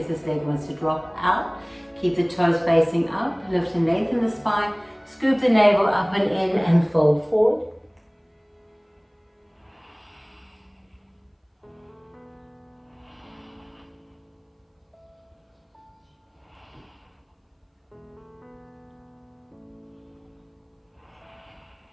this leg wants to drop out. Keep the toes facing up. Lift and lengthen the spine. Scoop the navel up and in and fold forward.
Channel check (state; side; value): identical; both; correlation 1.00